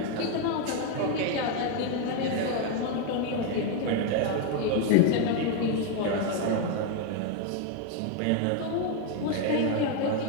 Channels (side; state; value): both; different; correlation 0.01